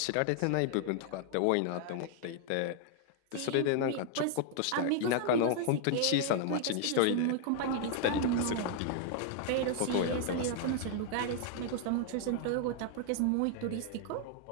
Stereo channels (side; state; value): both; different; correlation 0.00